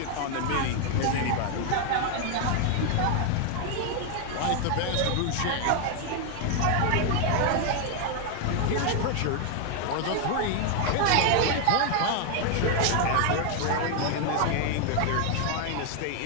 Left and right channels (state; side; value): different; both; correlation 0.01